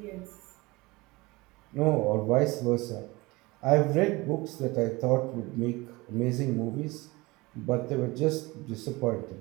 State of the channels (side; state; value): left; quieter; 22.6 dB